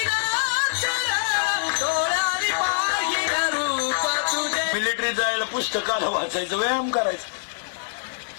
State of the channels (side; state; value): right; silent; 59 dB below the other